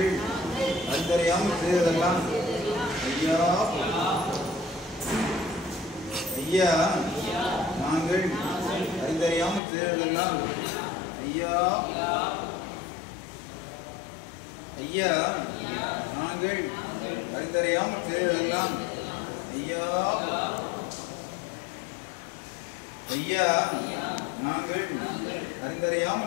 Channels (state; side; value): drops out; right; at 9.6 s